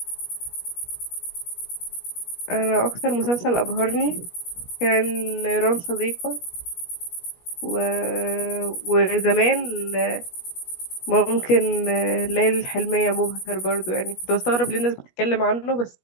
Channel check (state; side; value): late; right; 17 ms